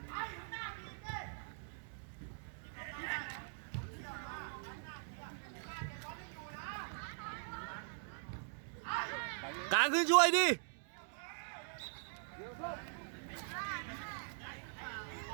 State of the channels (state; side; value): silent; left; digital silence